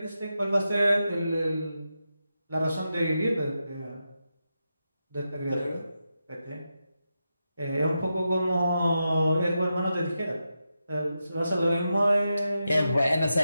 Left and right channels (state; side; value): inverted; both; correlation -0.88